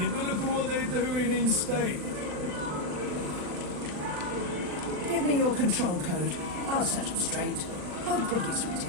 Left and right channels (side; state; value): left; late; 40 ms